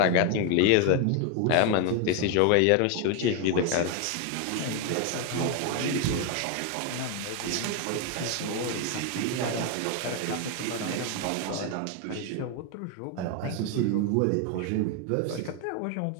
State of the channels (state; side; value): different; both; correlation 0.01